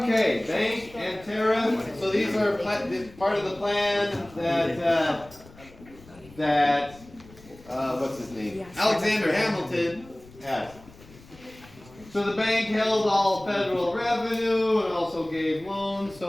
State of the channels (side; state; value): left; noise; rumble, 22 dB below the sound